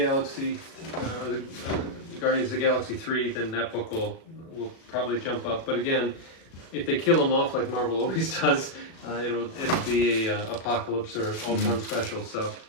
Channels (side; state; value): right; late; 36 ms